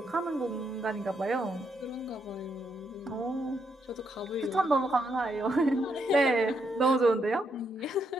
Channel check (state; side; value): normal; both; correlation 0.78